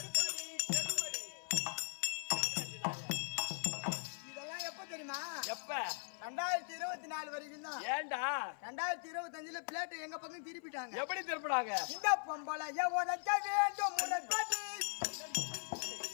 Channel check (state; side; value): silent; right; 51 dB below the other